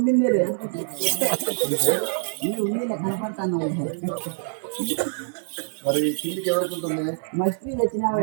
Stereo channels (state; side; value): silent; left; digital silence